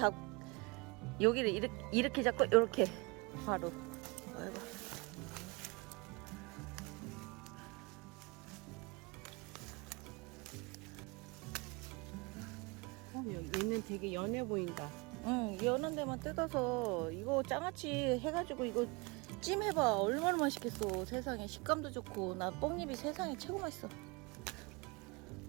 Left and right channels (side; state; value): left; quieter; 27.7 dB